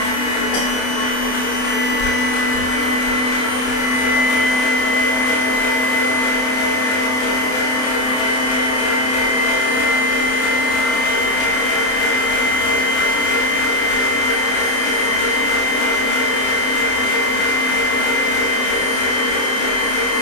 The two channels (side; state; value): right; late; 28 ms